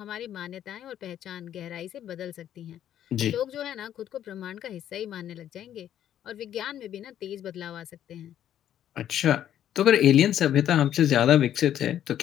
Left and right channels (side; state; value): right; quieter; 10.8 dB